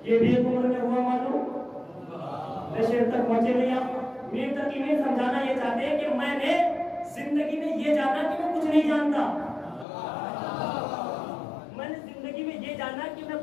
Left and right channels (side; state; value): right; drops out; at 9.9 s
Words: یہ بھی ایک عمر میں ہوا معلوم، میں شہر تک پہنچے نہیں آپ۔ میر تقی میر سمجھانا یہ چاہتے ہیں کہ میں نے زندگی میں یہ جانا کہ میں کچھ نہیں جانتا، میں نے زندگی میں یہ جانا کہ میں